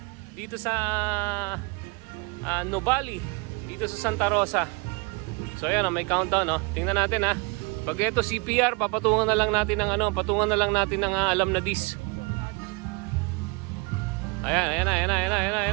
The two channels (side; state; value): left; quieter; 29.2 dB